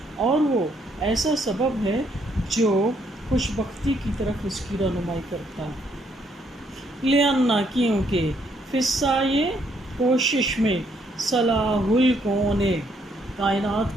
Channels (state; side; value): normal; both; correlation 0.71